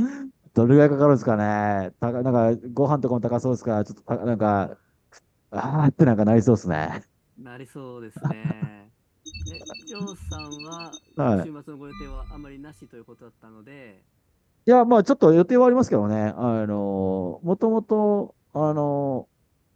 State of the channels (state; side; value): identical; both; correlation 1.00